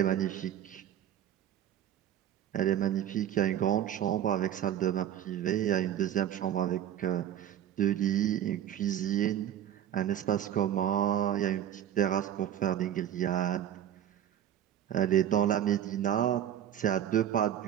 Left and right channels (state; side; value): quieter; left; 10.8 dB